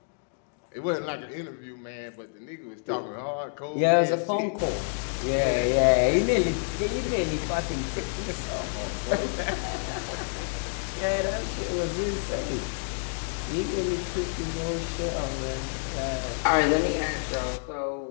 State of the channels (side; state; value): right; silent; digital silence